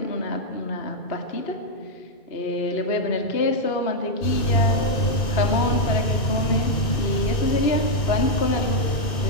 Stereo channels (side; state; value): right; late; 2.6 ms